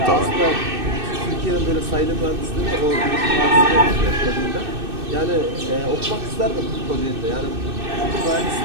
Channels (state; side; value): late; left; 2.6 ms